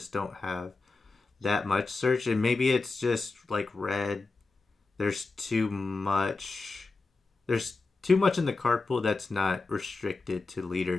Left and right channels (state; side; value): quieter; right; 3.7 dB